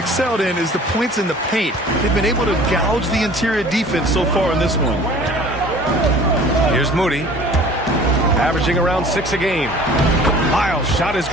in is the points in the paint. They've been able to gouge the interior defense so far in this one. Here's Moody, averaging around 6 a game. Lyles' shot is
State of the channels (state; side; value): normal; both; correlation 0.47